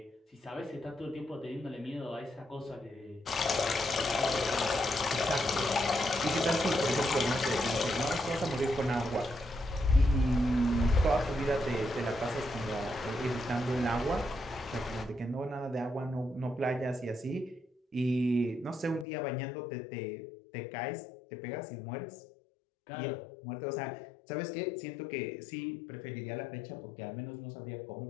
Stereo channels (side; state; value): right; drops out; at 19.1 s